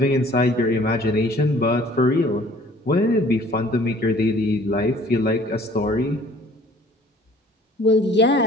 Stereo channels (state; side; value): normal; both; correlation 0.54